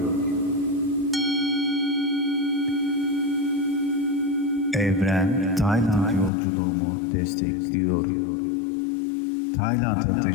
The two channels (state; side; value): drops out; right; at 6.3 s